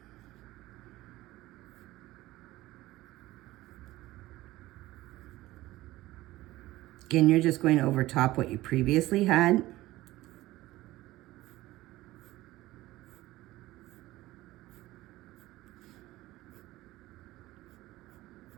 Again, you're just going over top what you previously had.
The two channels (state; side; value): quieter; left; 17.3 dB